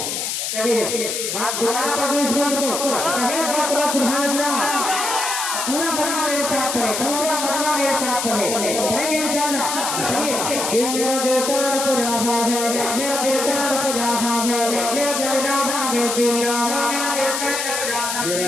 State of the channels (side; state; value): left; noise; hiss, 2 dB below the sound